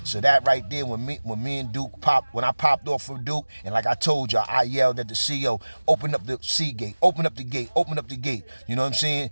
So that right there, when me and Duke when I popped off for Duke, and like I told y'all, I yelled at the CO, open up the C gate, open up the gate, open up the gate. You know what I'm saying?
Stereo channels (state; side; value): inverted; both; correlation -1.00